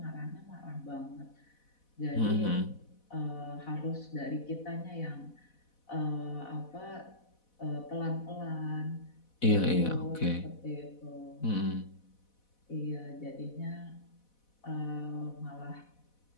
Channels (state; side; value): late; right; 4.1 ms